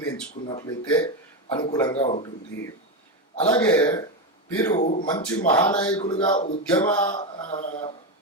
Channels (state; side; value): normal; both; correlation 0.11